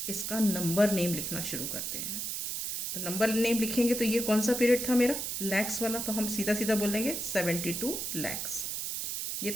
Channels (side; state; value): right; noise; hiss, 3 dB below the sound